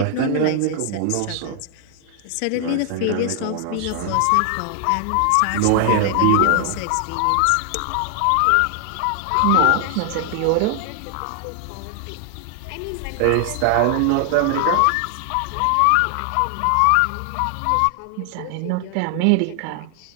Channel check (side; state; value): both; different; correlation 0.00